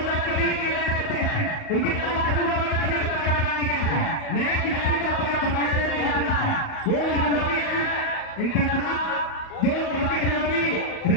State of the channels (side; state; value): right; late; 38 ms